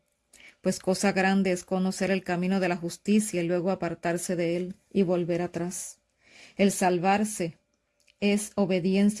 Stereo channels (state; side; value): identical; both; correlation 1.00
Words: Pues cosa grande es conocer el camino de la justicia y luego apartarse de él y volver atrás. El salvarse es